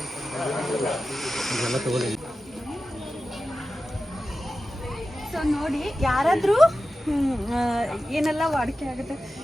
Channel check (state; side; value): normal; both; correlation 0.94